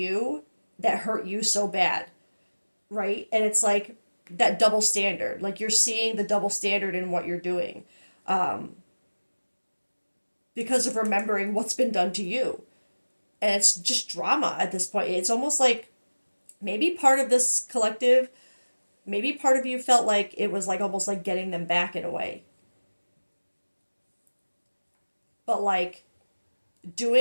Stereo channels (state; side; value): inverted; both; correlation -1.00